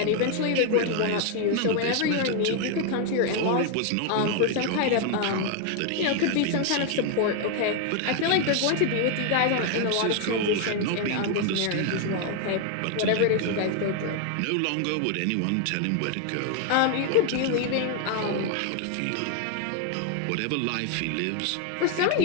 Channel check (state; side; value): different; both; correlation 0.01